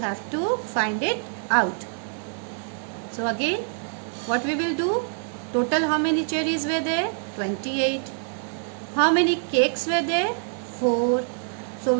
to find it out. So again, what we will do? Total how many cherries were there? 28. How many cakes were there? 4. So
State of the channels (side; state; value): left; silent; 61 dB below the other